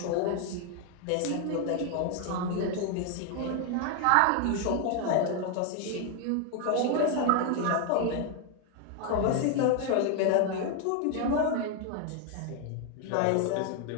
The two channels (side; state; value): both; different; correlation 0.01